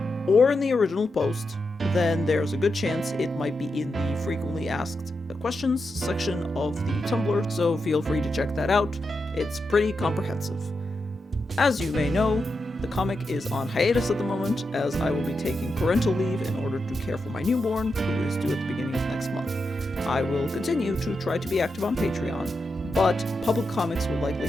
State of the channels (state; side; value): normal; both; correlation 0.87